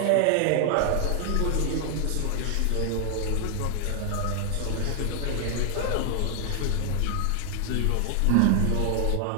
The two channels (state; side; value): different; both; correlation 0.00